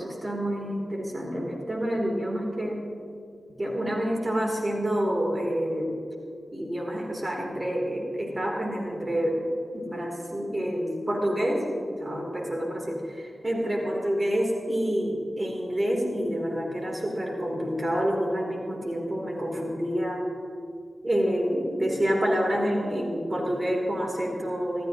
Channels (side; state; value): both; normal; correlation 0.95